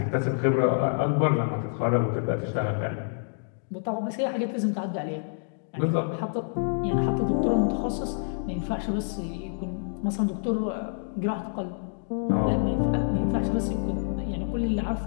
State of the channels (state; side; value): silent; right; digital silence